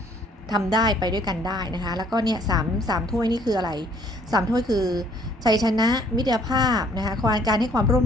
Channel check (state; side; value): normal; both; correlation 0.61